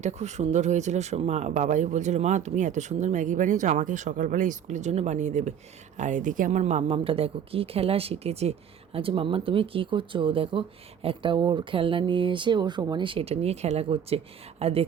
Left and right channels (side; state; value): left; quieter; 8.5 dB